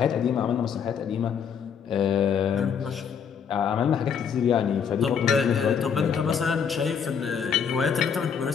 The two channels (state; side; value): quieter; right; 7.1 dB